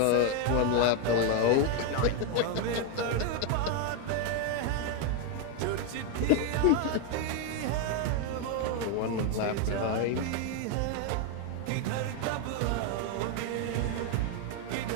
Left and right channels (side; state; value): both; different; correlation 0.01